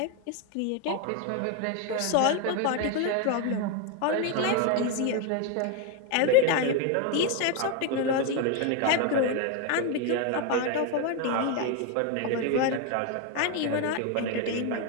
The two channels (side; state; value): both; different; correlation 0.01